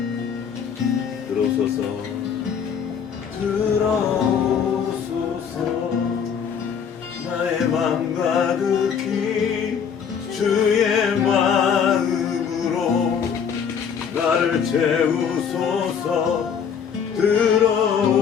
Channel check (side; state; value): right; quieter; 7.3 dB